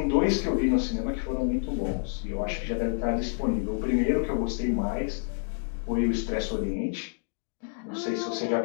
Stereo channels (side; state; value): right; silent; digital silence